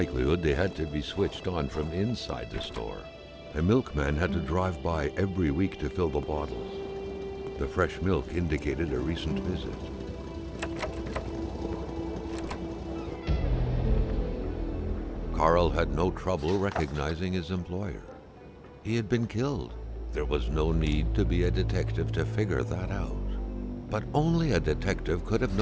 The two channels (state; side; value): identical; both; correlation 1.00